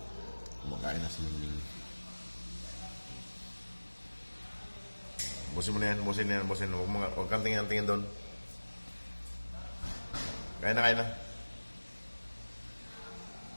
Kumakain na si Mingming. Busin mo na yan, busin na yan, busin. Huwag kang tingin-tingin doon. Kain na, kain na.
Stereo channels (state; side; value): inverted; both; correlation -1.00